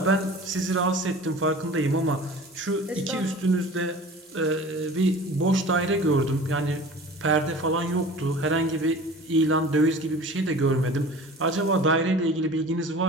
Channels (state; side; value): normal; both; correlation 0.41